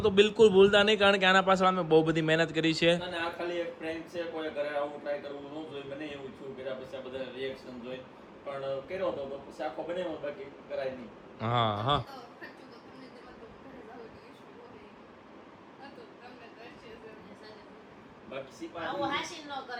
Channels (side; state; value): both; identical; correlation 1.00